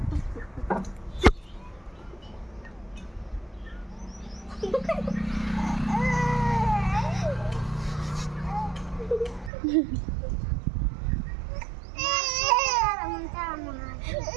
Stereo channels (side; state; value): left; drops out; at 9.5 s